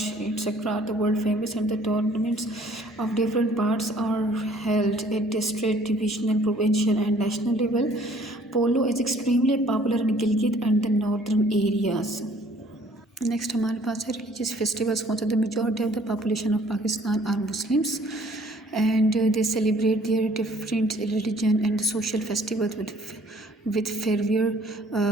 etcetera are the world famous and the tournaments of different parts are held at district, divisional, provincial and national level. Polo is extremely popular in Gilgit and the northern areas. Next हमारे पास है religious festivals. कौन सा? The majority of the population of Pakistan are Muslims and they celebrate their different religion and social festivals with fervor।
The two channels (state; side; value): normal; both; correlation 0.58